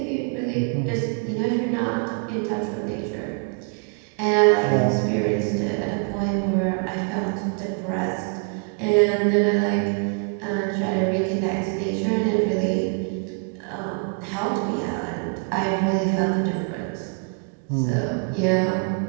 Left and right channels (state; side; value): quieter; left; 38.7 dB